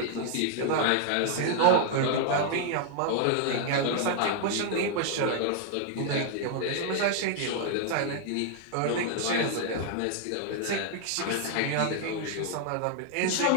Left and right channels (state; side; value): different; both; correlation 0.00